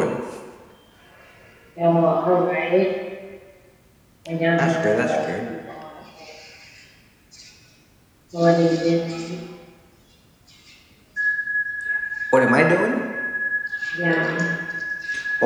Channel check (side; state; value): both; identical; correlation 1.00